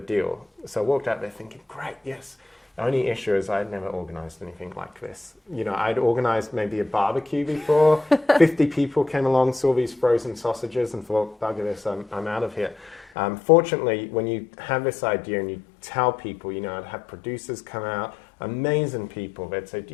So I walked out there thinking, great, yes. The only issue is I'd never organized anything like this. You know, I'd organized maybe a barbecue before. 50 people came along, saw these frozen sausages and thought, bugger this, I'm out of here. Fortunately, when you have this idea and you tell people, you know, I'd have producers come out, amazing people. They'd say, do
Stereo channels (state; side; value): drops out; right; at 13.1 s